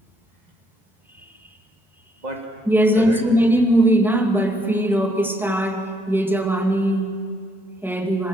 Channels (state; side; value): normal; both; correlation 0.71